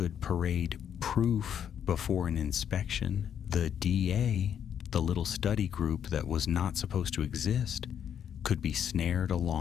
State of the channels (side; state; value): right; quieter; 8.8 dB